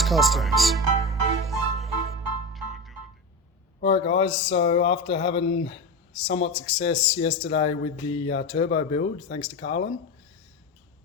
life. Customs. Alright guys, so after having somewhat success yesterday with the turbo build, thanks to Carlin,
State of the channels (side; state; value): both; normal; correlation 0.21